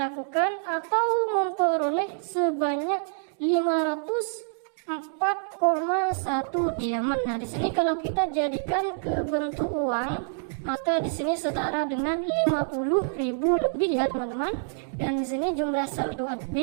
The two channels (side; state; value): left; silent; digital silence